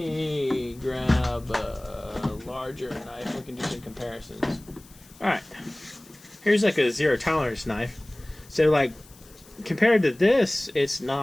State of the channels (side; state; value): left; noise; hiss, 24 dB below the sound